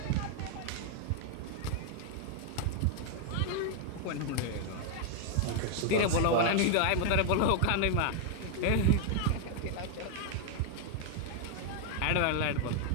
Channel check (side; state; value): both; different; correlation 0.00